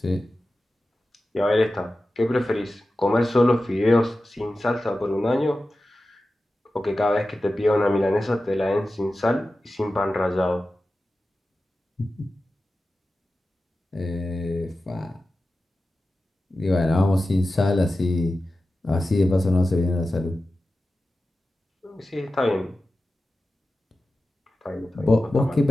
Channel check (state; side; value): normal; both; correlation 0.94